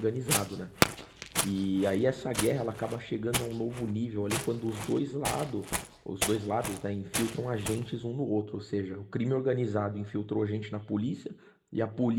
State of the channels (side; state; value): both; identical; correlation 1.00